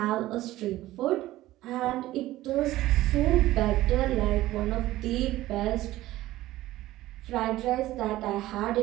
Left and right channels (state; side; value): quieter; left; 16.1 dB